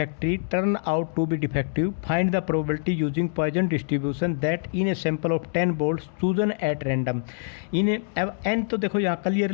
turn out to be defective. Find the probability using Poisson distribution that in a sample of 10 bolts chosen at random. अब n तो देखो यहाँ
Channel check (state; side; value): silent; right; digital silence